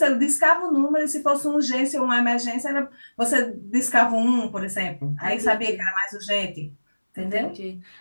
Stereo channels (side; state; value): both; inverted; correlation -1.00